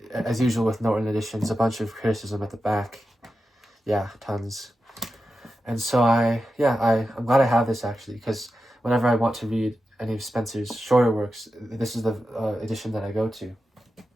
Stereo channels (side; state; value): both; normal; correlation 0.91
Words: as usual with Norton editions, a bunch of criticism at the back. Yeah, tons. And so I'm glad I have this actually, because whenever I want to read any of Spenser's shorter works, this is the edition that I go to.